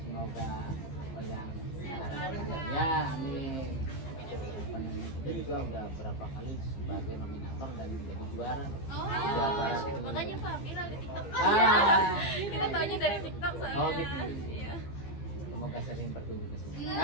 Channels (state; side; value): late; right; 15 ms